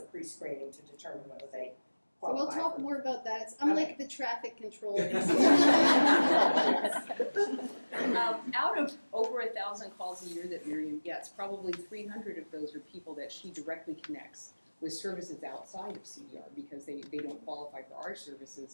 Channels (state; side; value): inverted; both; correlation -1.00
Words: pre-screening to determine whether they qualify. So we'll talk more about that. I'm okay. like the traffic controller. Out of over 1,000 calls a year that Miriam gets, probably 300 of those are people that she directly connects with services outside of CDR because they don't qualify for our